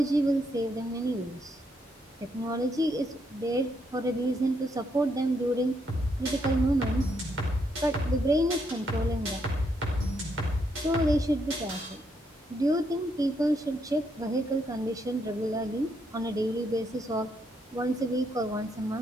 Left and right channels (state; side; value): normal; both; correlation 0.76